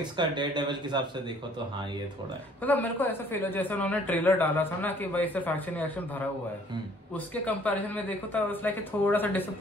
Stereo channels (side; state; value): both; normal; correlation 0.58